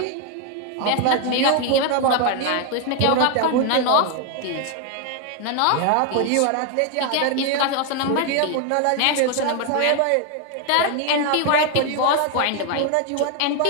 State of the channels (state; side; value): different; both; correlation 0.01